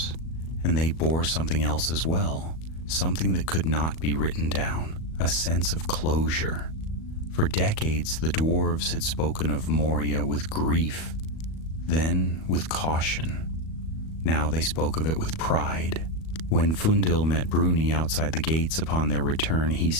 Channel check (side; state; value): right; late; 37 ms